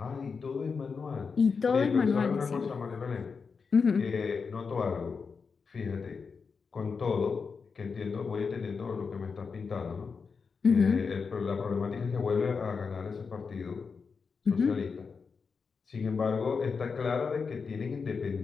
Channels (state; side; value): quieter; right; 5.3 dB